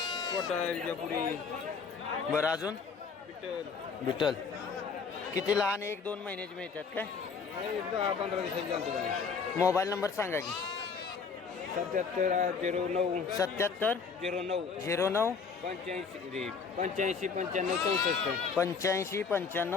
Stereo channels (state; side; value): quieter; right; 5.5 dB